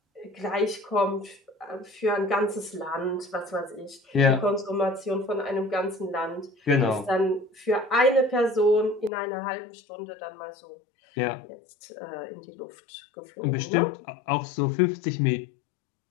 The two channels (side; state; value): right; drops out; at 9.1 s